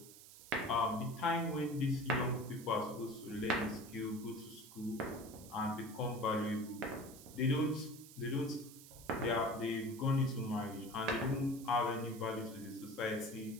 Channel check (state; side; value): noise; right; hiss, 17 dB below the sound